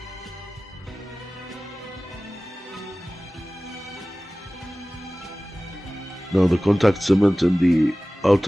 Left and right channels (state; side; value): normal; both; correlation 0.97